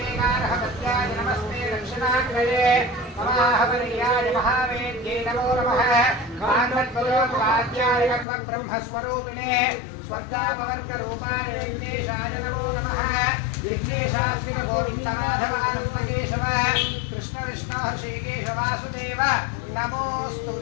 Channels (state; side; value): drops out; right; at 8.2 s